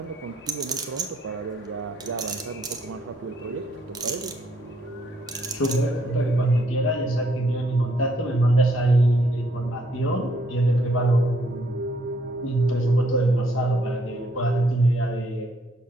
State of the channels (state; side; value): normal; both; correlation 0.70